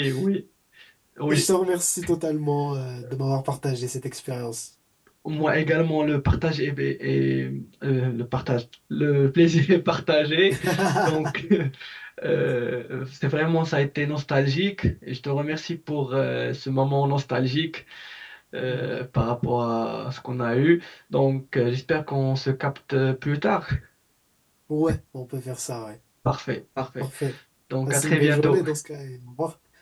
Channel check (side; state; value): both; identical; correlation 1.00